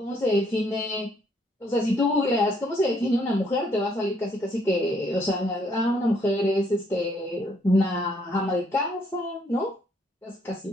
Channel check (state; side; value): normal; both; correlation 0.68